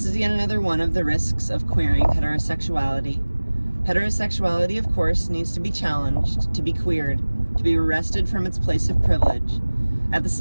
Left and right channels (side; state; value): both; inverted; correlation -1.00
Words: is yet another one of the risks of queering heterosexuality. Heterosexuality, of course, needs to be challenged, to be queered, to be wrested from its place of privilege. At the